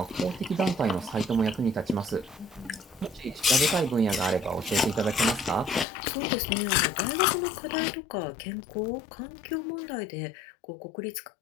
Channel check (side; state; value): right; drops out; at 5.9 s